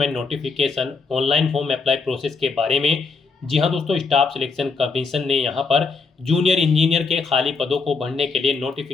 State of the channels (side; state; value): right; quieter; 4.5 dB